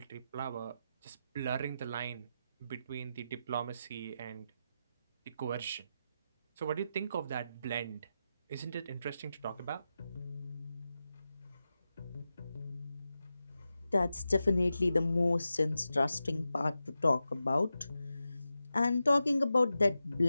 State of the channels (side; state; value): both; inverted; correlation -0.90